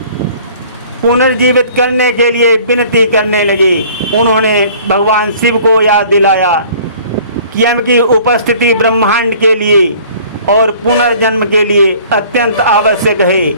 पुनर्जीवित करने के लिए विनती करने लगे। उन्होंने भगवान शिव को याद दिलाया कि यम की उपस्थिति ब्रह्मांड के लिए और पुनर्जन्म के लिए अत्यंत आवश्यक है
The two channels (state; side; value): inverted; both; correlation -0.51